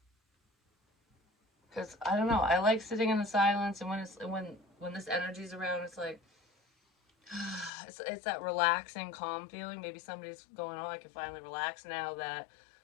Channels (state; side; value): drops out; right; at 7.7 s